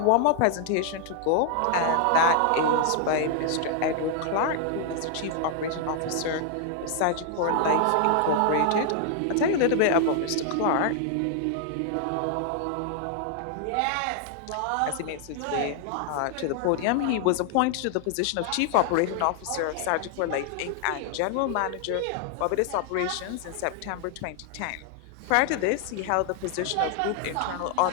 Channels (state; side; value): different; both; correlation 0.00